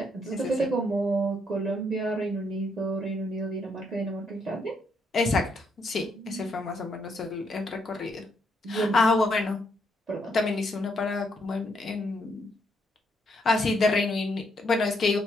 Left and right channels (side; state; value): both; normal; correlation 0.75